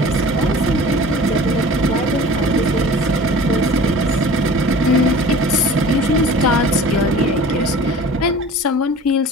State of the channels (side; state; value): both; normal; correlation 0.43